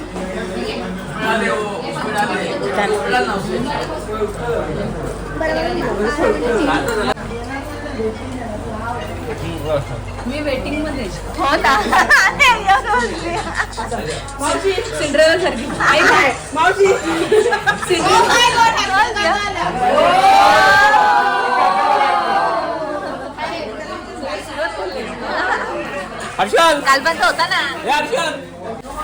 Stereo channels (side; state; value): both; identical; correlation 1.00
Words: मी वेटिंग मध्ये. हो ना. मावशी सिंड्रेला सारखी. आई काय मावशी हर्षल काल पण होता ना.